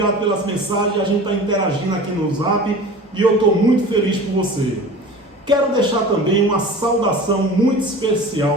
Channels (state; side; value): normal; both; correlation 0.38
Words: pelas mensagens. A gente está interagindo aqui no Zap, e eu estou muito feliz por você. Quero deixar também uma saudação muito